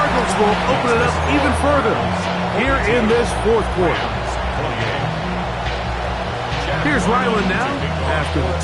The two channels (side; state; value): both; identical; correlation 1.00